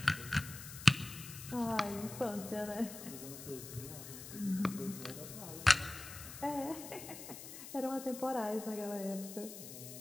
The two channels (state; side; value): noise; left; hiss, 11 dB below the sound